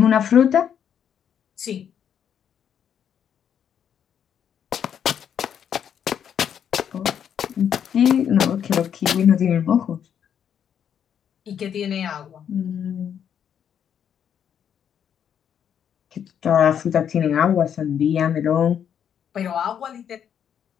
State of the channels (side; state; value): right; quieter; 8.6 dB